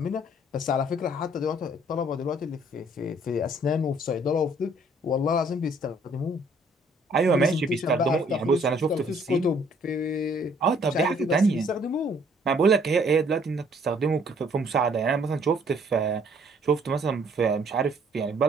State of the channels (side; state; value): both; normal; correlation 0.62